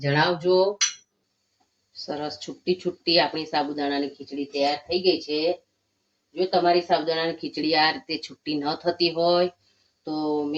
સરસ છૂટી છૂટી આપણી સાબુદાણાની ખીચડી તૈયાર થઈ ગઈ છે. જો તમારી સાબુદાણાની ખીચડી આ રીતે છૂટી ન થતી હોય તો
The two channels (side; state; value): both; identical; correlation 1.00